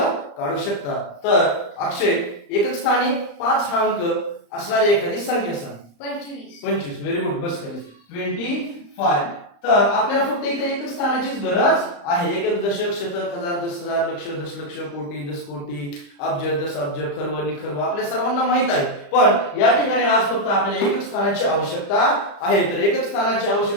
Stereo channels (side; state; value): right; late; 35 ms